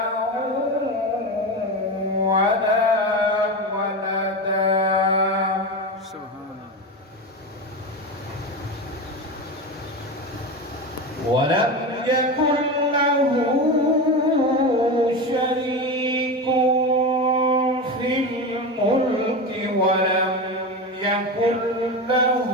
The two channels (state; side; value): normal; both; correlation 0.21